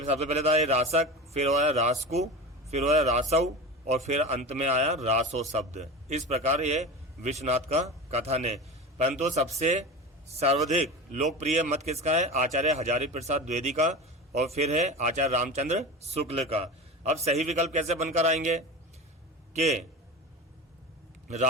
पहले था ये रासक, फिर आया रासकु, फिर आया रासऊ और फिर अंत में आया रासो शब्द। इस प्रकार ये विश्वनाथ का कथन है। परंतु सबसे सर्वाधिक लोकप्रिय मत किसका है? आचार्य हजारी प्रसाद द्विवेदी का और फिर है आचार्य रामचंद्र शुक्ल का। अब सही विकल्प कैसे बनकर आएंगे कि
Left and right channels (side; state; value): both; normal; correlation 0.28